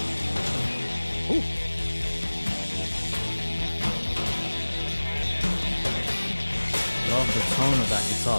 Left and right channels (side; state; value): both; inverted; correlation -1.00